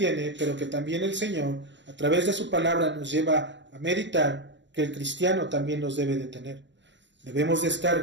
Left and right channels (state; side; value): late; left; 0.53 ms